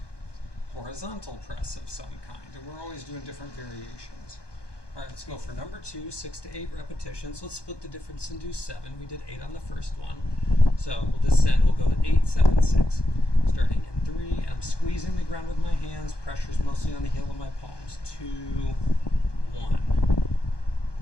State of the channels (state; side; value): late; right; 1.2 ms